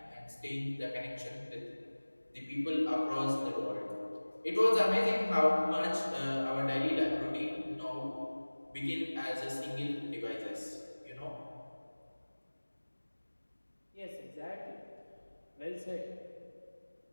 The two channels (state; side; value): inverted; both; correlation -1.00